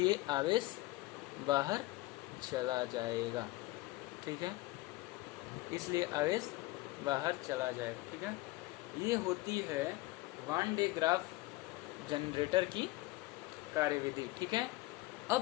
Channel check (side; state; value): right; quieter; 19.8 dB